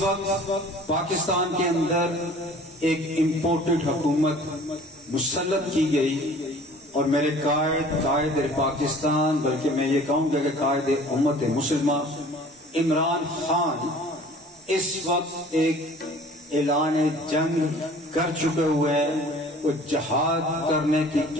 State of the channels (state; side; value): normal; both; correlation 0.49